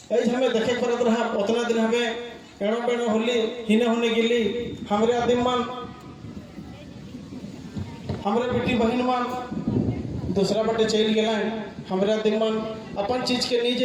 ऐसे हमें देखे पड़त रहा उतना दिन हमें एड़ो पेड़ो होली हिने होने गिली हमारे आदिम मन हमारे बेटी बहन मन दूसरा बाटे चल गए हमारे आदिम मन अपन चीज के नहीं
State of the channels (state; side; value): identical; both; correlation 1.00